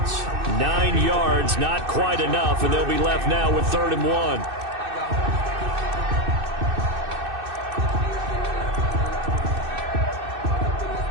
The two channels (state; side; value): late; left; 2.6 ms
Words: 9 yards, not quite enough, and they'll be left now with 3rd and 1.